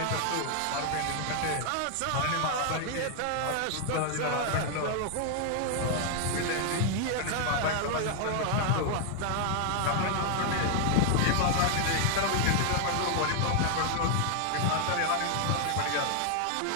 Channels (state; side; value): different; both; correlation 0.00